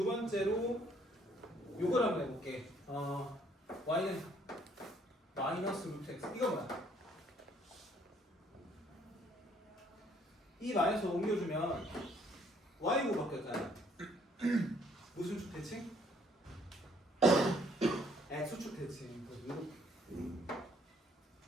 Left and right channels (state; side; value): normal; both; correlation 0.64